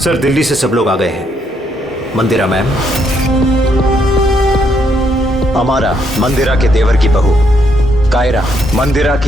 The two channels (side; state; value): both; normal; correlation 0.74